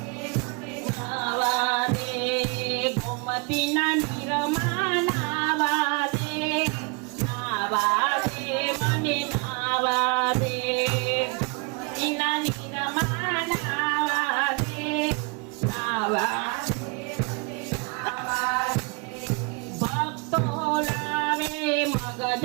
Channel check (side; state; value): left; quieter; 33.3 dB